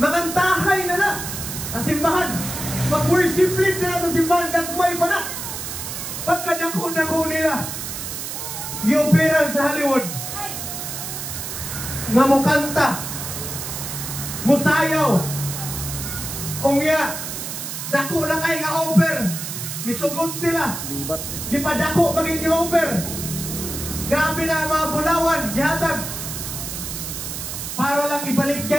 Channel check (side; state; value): right; noise; hiss, 6 dB below the sound